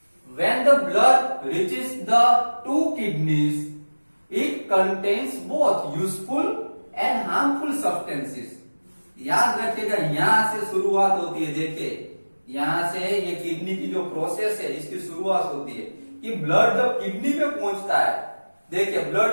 when the blood reaches the 2 kidneys, it contains both useful and harmful substances. याद रखिएगा, यहां से शुरुआत होती है। देखिए, यहां से ये किडनी की जो प्रोसेस है इसकी शुरुआत होती है कि ब्लड जब किडनी में पहुंचता है, देखिए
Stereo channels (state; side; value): inverted; both; correlation -1.00